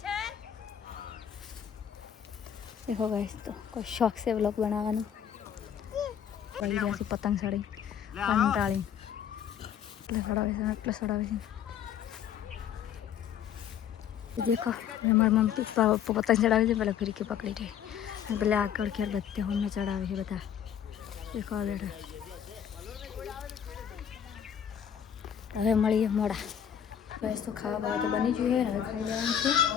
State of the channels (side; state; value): right; quieter; 9.0 dB